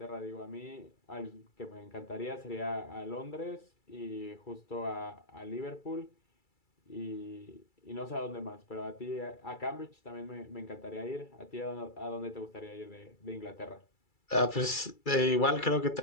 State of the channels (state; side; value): late; right; 2.3 ms